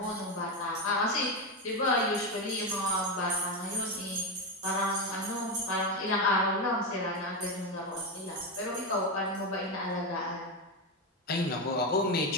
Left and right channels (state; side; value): normal; both; correlation 0.12